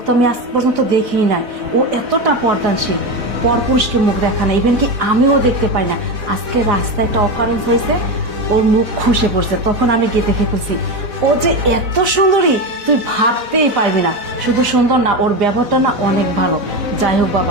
তো আমি আজ পর্যন্ত দেখিই নাই। ও এতটা পর্দানশীল, পরপুরুষকে মুখ দেখা না, ইভেন কি আমিও দেখতে পাই না। আজকে রাস্তায় একটা অকারেন্স হয়েছে, ওর মুখ খসে পড়ছে, তখন আমি গিয়ে দেখে ফেলছি। ও যে এত সুন্দরী তুই ভাবতেই পারবি না। শুধু সুন্দর না, ওর ব্যবহারটা না অনেক ভালো। যাই হোক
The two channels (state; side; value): late; left; 4.0 ms